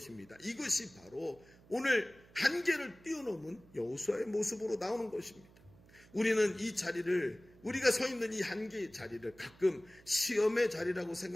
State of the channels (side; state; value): right; noise; hum, 25 dB below the sound